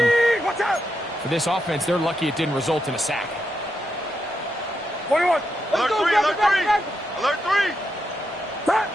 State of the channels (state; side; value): normal; both; correlation 0.83